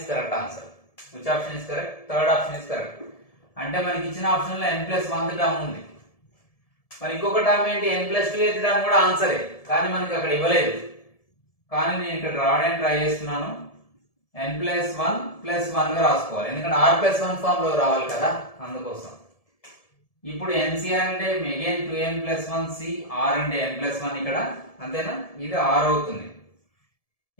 correct answer. Which option is correct? Third option is correct. అంటే మనకి ఇచ్చిన ఆప్షన్ లో n + 1 టర్మ్ ఉంది. మరి ఇంకొక టర్మ్ ఏంటి? n + 2 టర్మ్ కూడా ఆన్సరే, కానీ మనకి అక్కడ ఇవ్వలేదు. కానీ నేను ఇక్కడ రావడానికి ట్రై చేస్తున్నాను. n + 1 + 1 గా రాసుకోవాలి, ఎందుకంటే r + 1 ఫామ్ లో రావాలి కదా, అందుకోసం. ఇప్పుడు ncr అంటే అగైన్ 2n + 1 c, r అంటే n + 1 ఇక్కడ, అంతేనా? ఇది r అవుతుంది.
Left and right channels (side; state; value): right; late; 1.7 ms